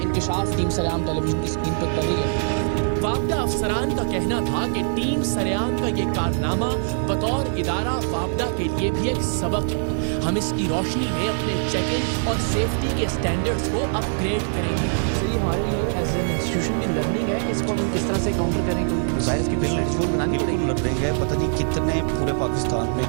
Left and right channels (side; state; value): left; silent; digital silence